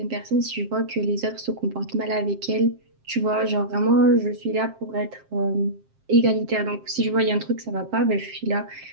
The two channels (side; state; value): left; late; 7.5 ms